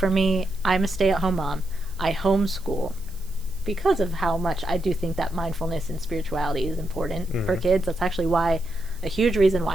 me, I'm a stay-at-home mom. I homeschool because of how much I do think that mindfulness and spirituality is important for kids. That's actually a huge reason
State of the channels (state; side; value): noise; right; hiss, 23 dB below the sound